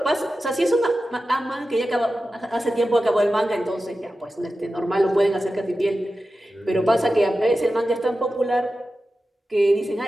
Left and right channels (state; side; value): normal; both; correlation 0.93